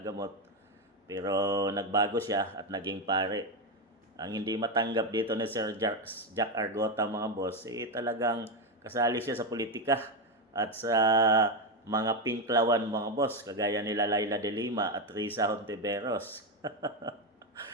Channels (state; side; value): normal; both; correlation 0.09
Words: gamot. Pero nagbago siya at naging pare. Ang hindi matanggap dito ni Sir Jack Argota mga boss, talagang kasali siya sa politika at sa mga pinklawan mga boss, kagaya nila Laila de Lima at Risa Hontiveros.